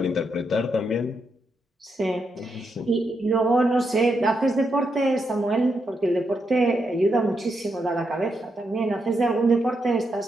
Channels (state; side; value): normal; both; correlation 0.82